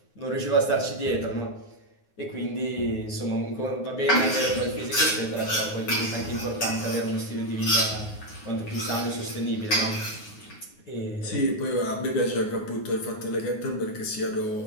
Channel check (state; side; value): late; right; 9.6 ms